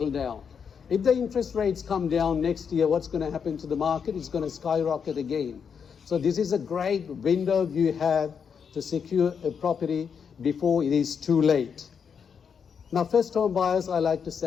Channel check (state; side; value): quieter; right; 6.8 dB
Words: down. If the interest rates come down next year, what's going to happen to the market? It's going to skyrocket again. So this is a great window you have to secure a property before it is too late. Now, first home buyers, I like to